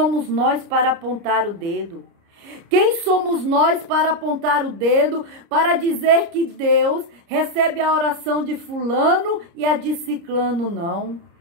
nós para apontar o dedo? Quem somos nós para apontar o dedo, para dizer que Deus recebe a oração de fulano e a de ciclano não?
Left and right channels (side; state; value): left; late; 30 ms